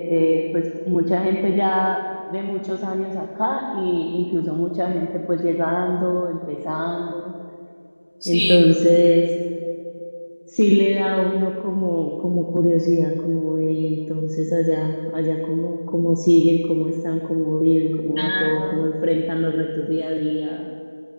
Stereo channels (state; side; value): inverted; both; correlation -1.00